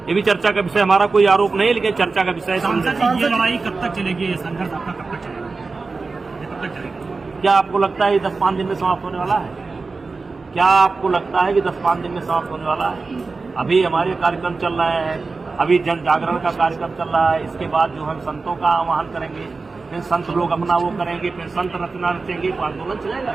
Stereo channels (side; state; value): left; quieter; 4.1 dB